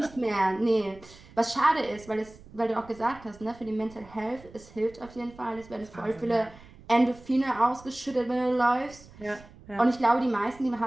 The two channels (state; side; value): noise; right; rumble, 21 dB below the sound